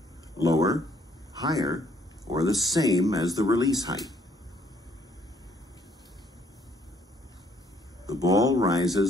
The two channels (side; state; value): both; normal; correlation 0.65